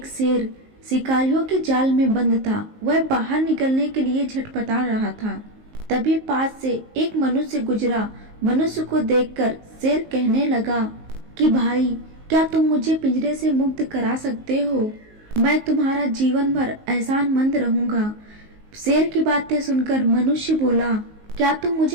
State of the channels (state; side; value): late; left; 19 ms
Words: शेर शिकारियों के जाल में बंद था। वह बाहर निकलने के लिए झटपटा रहा था। तभी पास से एक मनुष्य गुजरा। मनुष्य को देखकर शेर कहने लगा कि भाई, क्या तुम मुझे पिंजरे से मुक्त करा सकते हो? मैं तुम्हारा जीवन भर एहसानमंद रहूंगा। शेर की बातें सुनकर मनुष्य बोला, क्या तुम